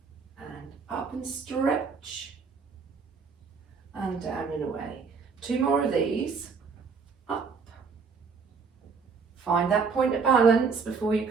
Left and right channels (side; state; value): left; quieter; 5.3 dB